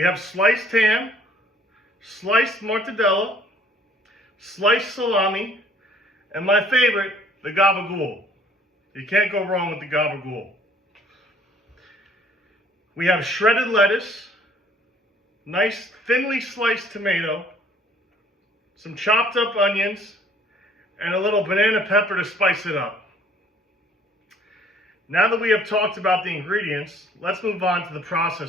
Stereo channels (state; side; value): normal; both; correlation 0.58